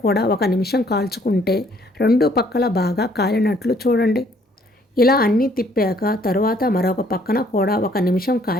కూడా 1 నిమిషం కాల్చుకుంటే 2 పక్కల బాగా కాలినట్లు చూడండి. ఇలా అన్నీ తిప్పాక తర్వాత మరొక పక్కన కూడా 1 నిమిషం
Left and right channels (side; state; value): both; normal; correlation 0.63